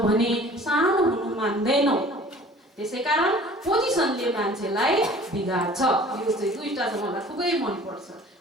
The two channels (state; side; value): normal; both; correlation 0.48